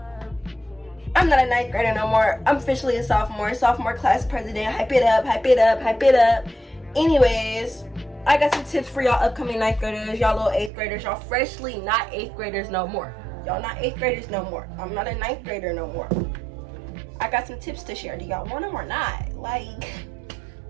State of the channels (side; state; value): left; drops out; at 10.7 s